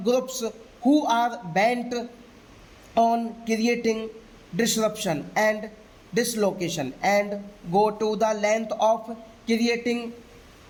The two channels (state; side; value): identical; both; correlation 1.00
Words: groups who are bent on creating disruption, and dislocation and go to the length of creating